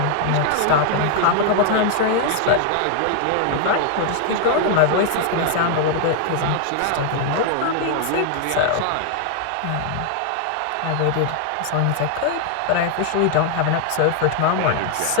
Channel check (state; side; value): different; both; correlation 0.00